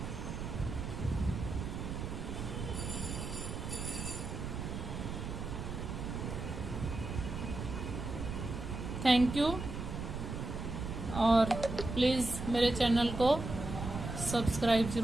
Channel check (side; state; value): right; noise; rumble, 5 dB below the sound